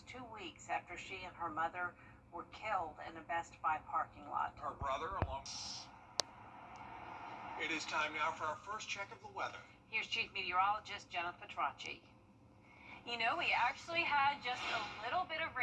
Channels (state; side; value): identical; both; correlation 1.00